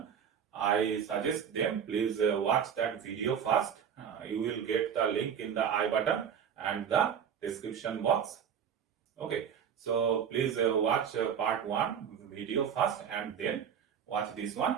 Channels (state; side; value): quieter; left; 8.0 dB